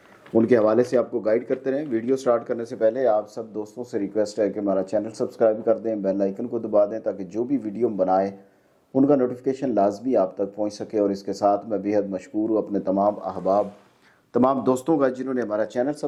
उनके हवाले से आपको गाइड करते रहें। वीडियो स्टार्ट करने से पहले आप सब दोस्तों से रिक्वेस्ट है कि हमारा चैनल सब्सक्राइब कर दें, बेल आइकन को दबा दें ताकि जो भी वीडियो हम बनाएं उनका नोटिफिकेशन लाजमी आप तक पहुँच सके। और इसके साथ मैं बेहद मशकूर हूँ अपने तमाम अहबाब, तमाम दोस्तों का जिन्होंने हमारा चैनल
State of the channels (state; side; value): identical; both; correlation 1.00